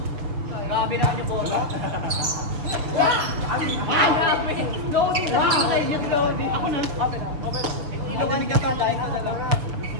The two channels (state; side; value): late; left; 6.6 ms